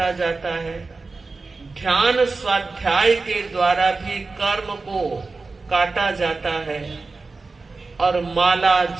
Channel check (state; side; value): quieter; left; 3.9 dB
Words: जाता है। ध्यान स्वाध्याय के द्वारा भी कर्म को काटा जाता है और माला